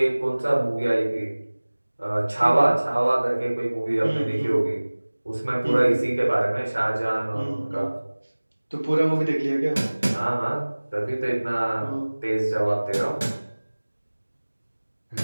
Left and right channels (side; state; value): both; inverted; correlation -1.00